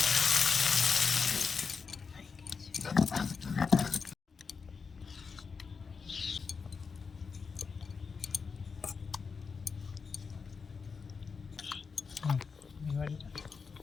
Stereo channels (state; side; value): quieter; right; 5.3 dB